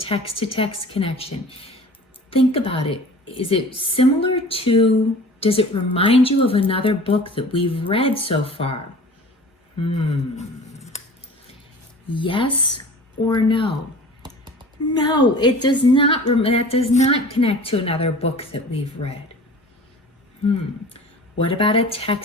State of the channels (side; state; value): both; normal; correlation 0.42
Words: connection. Think about it. Is it similar to, does it remind you of another book that we've read so far? Yes or no? No, it does not. That does not connect to another book that we've read. What about a